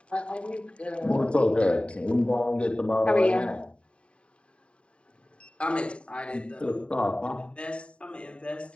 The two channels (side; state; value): right; late; 0.058 ms